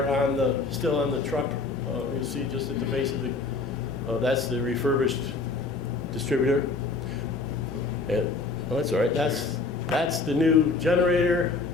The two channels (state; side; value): quieter; right; 4.0 dB